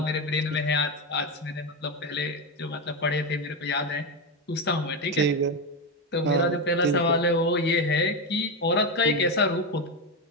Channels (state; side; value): normal; both; correlation 0.12